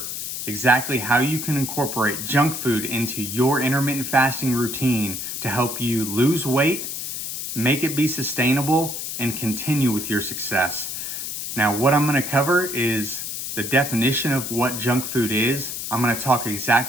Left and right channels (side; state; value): left; noise; hiss, 5 dB below the sound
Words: exactly how you can incorporate junk food into your intermittent fasting routine to help you lose weight, make it be sustainable, and continue with your success. Now, what I'm going to cover is the definition of what junk food is. I'm going to talk